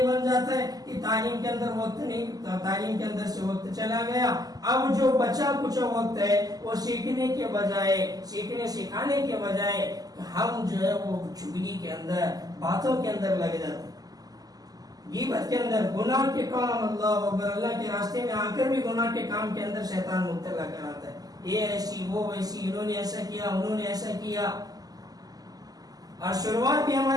بن جاتا ہے کہ تعلیم کے اندر وقت نہیں, تعلیم کے اندر سے وقت چلا گیا. اب جو بچا کچھ وقت ہے وہ سیکھنے کے بجائے, سکھانے کے بجائے ہم جو ہے وہ چگلی کے اندر, باتوں کے اندر لگ جاتے ہیں, غیبت کے اندر, گناہ کے کام. اللہ اکبر, اللہ کے راستے میں آ کر بھی گناہ کے کام کے اندر شیطان مبتلا کراتا ہے. یہ ایسی وہ ویسی, انہوں نے ایسا کیا, انہوں نے ایسا کیا. اور شروعات بھی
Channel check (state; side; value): late; left; 0.18 ms